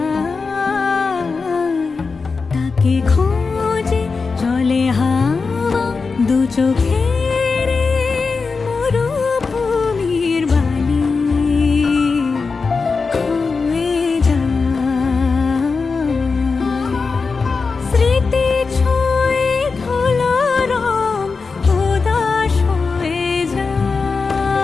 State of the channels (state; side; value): quieter; right; 4.6 dB